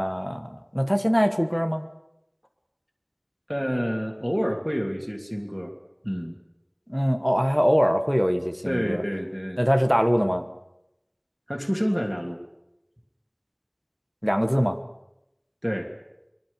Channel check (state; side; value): identical; both; correlation 1.00